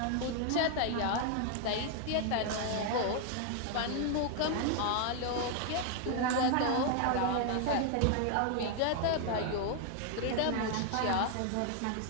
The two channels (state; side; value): different; both; correlation 0.00